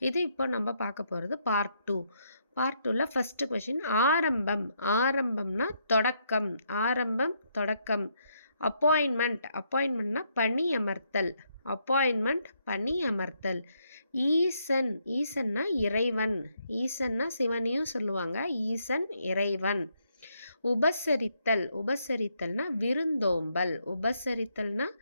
இது இப்போ நம்ம பார்க்க போகிறது பார்ட் 2. பார்ட் 2ல் ஃபஸ்ட்டு கொஷின் ஆரம்பம். ஆரம்பம்னா தொடக்கம். ஆரம்பம் தொடக்கம். அப்பாயின்மெண்ட்னா பணி அமர்த்தல். அப்பாயின்மெண்ட் பணி அமர்த்தல். ஈசன். ஈசன்னா இறைவன். ஈசன்னா சிவனையும் சொல்லுவாங்க. ஈசன் இறைவன். உபசரித்தல். உபசரித்தல்னா விருந்தோம்பல். உபசரித்தல்னா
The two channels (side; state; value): both; inverted; correlation -0.75